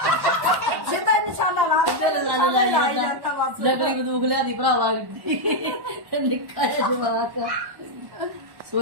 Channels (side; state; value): left; late; 1.1 ms